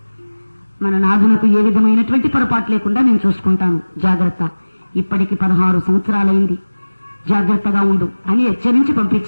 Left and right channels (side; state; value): both; inverted; correlation -1.00